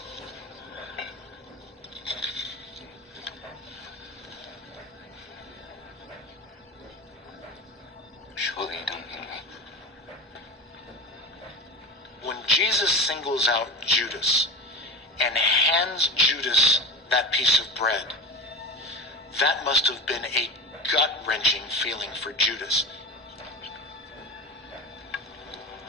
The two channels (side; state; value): both; normal; correlation 0.30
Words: Surely you don't mean me. When Jesus singles out Judas and hands Judas that piece of bread, that must have been a gut-wrenching feeling for Judas.